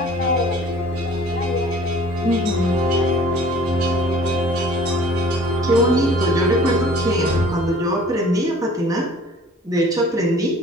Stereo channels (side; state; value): both; normal; correlation 0.49